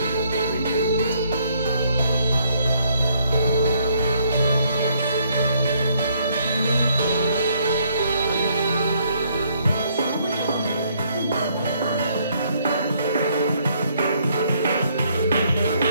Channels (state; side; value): inverted; both; correlation -0.68